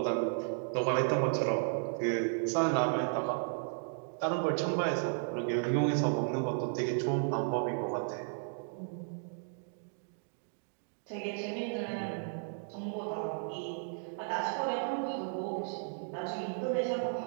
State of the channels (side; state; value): left; silent; digital silence